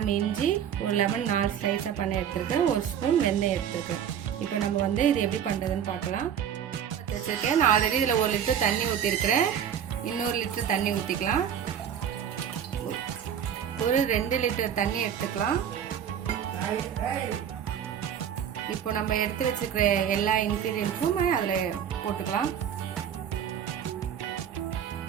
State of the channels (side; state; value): left; quieter; 8.9 dB